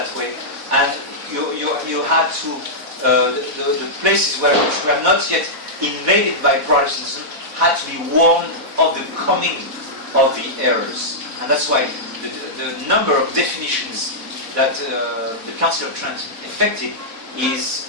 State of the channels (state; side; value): late; left; 4.1 ms